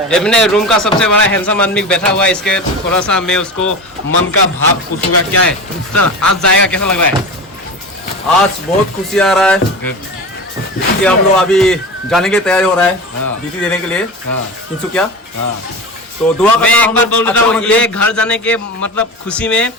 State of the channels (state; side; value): normal; both; correlation 0.28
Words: है। एमने रूम का सबसे बड़ा हैंडसम आदमी बैठा हुआ है, इसके थोड़ा सा मैं उसको मन का भाव पूछूंगा क्या है। तो आज जाएगा, कैसा लग रहा है? आज बहुत खुशी आ रहा है कि हम लोग अभी जाने की तैयारी हो रहा है ड्यूटी देने के लिए तिनसुकिया। तो दुआ मैं एक बार बोल देता हूँ, ये घर जाने के मतलब खुशी में